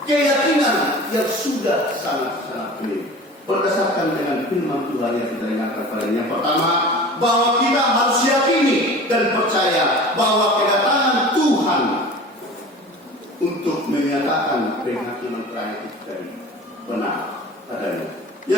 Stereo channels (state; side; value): normal; both; correlation 0.39